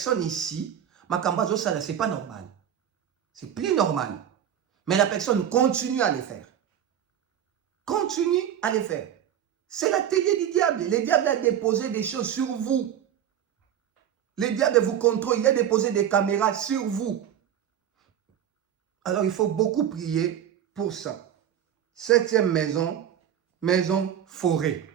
ici, makamba zo sala, c'est pas normal. C'est plus normal. Mais la personne continue à les faire. Continue à les faire. C'est l'atelier du diable. Le diable a déposé des choses sur vous. Le diable vous contrôle. Il a déposé des caméras sur vous. Alors il faut beaucoup prier pour ça. 7e maison, maison forêt.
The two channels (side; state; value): left; quieter; 9.8 dB